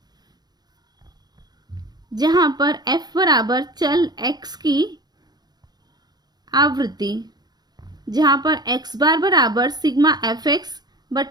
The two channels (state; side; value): late; left; 0.20 ms